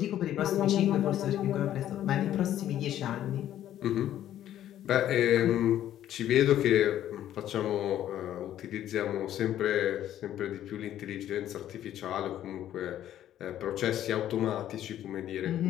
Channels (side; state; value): right; quieter; 11.8 dB